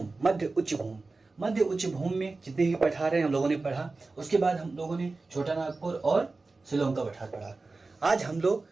मध्य उच्च भूमि। मध्य उच्च भूमि में जितने भी पठार हैं हम लोगों ने पढ़ा। उसके बाद हम लोगों ने छोटा नागपुर और शिलोंग का पठार पढ़ा। आज हम लोग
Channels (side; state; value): left; quieter; 3.6 dB